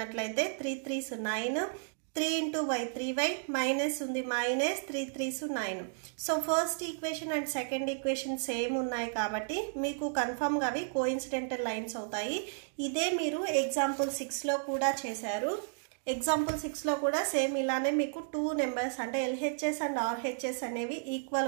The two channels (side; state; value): left; silent; digital silence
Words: 3 3s 9, 3 into y 3y minus ఉంది minus 3 3s 9. So first equation and second equation same ఉన్నాయి కాబట్టి మీకు కన్ఫర్మ్గా అవి కోఇన్సిడెంటల్ లైన్స్ అవుతాయి. ఇదే మీరు ఎగ్జాంపుల్ 6లో కూడా చేశారు. ఎగ్జాంపుల్ 6లో కూడా సేమ్ ఇలానే మీకు 2 నెంబర్స్ అంటే LHS అండ్ RHS అనేవి